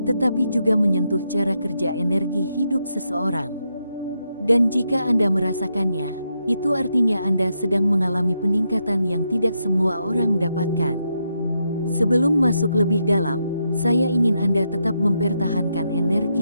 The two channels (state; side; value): inverted; both; correlation -0.82